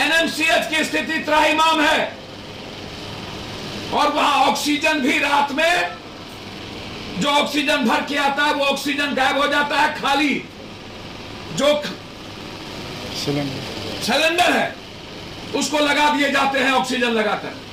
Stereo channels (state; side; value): identical; both; correlation 1.00